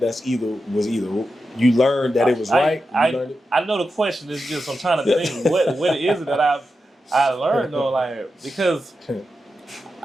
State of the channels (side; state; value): both; normal; correlation 0.89